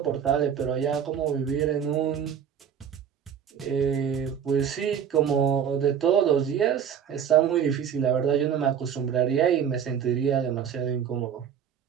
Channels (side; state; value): left; quieter; 8.3 dB